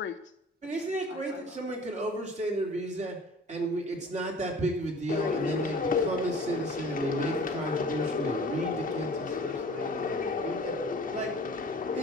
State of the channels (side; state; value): both; normal; correlation 0.46